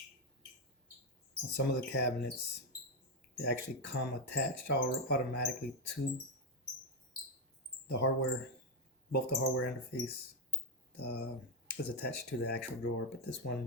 On some of the cabinets, they actually come attached automatically to the hardware. Both the hardware and the face is attached to the actual drawer, but this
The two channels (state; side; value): normal; both; correlation 0.05